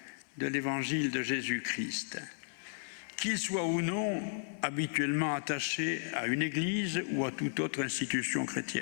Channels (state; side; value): silent; right; digital silence